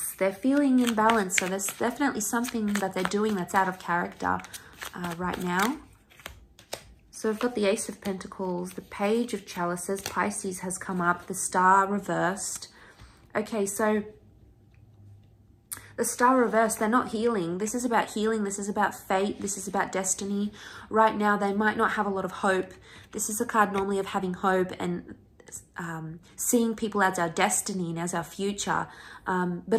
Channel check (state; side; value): identical; both; correlation 1.00